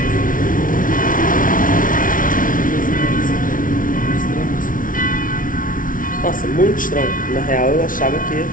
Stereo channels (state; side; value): late; right; 0.39 ms